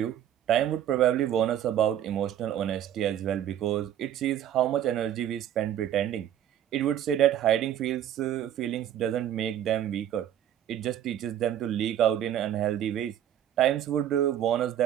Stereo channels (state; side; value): quieter; left; 10.8 dB